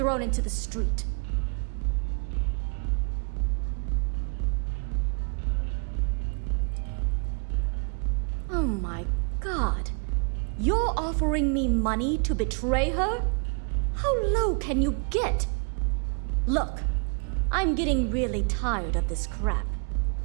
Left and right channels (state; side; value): quieter; left; 39.3 dB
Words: into the street. Oh my god. You're offering me money to betray her? How low can you get? Look, I'm getting really tired of this crap.